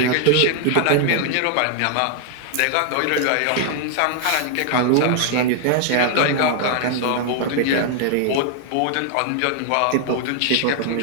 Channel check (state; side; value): different; both; correlation 0.00